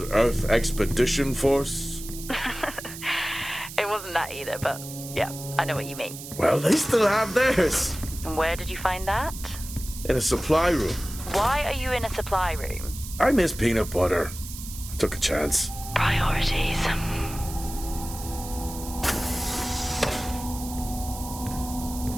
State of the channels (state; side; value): noise; right; hiss, 12 dB below the sound